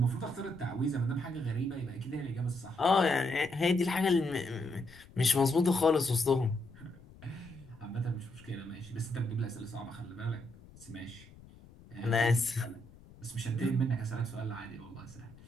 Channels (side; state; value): left; noise; rumble, 21 dB below the sound